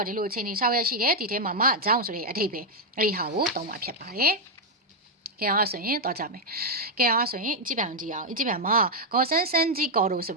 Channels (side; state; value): both; normal; correlation 0.00